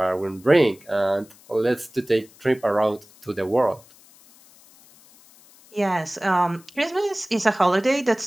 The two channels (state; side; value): noise; left; hiss, 26 dB below the sound